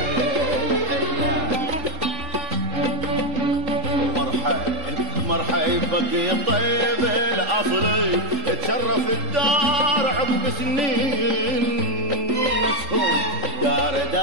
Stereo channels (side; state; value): left; late; 3.8 ms